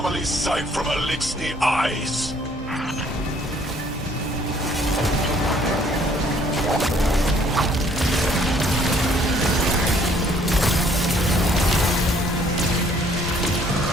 sight from Elixni eyes.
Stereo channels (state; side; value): normal; both; correlation 0.62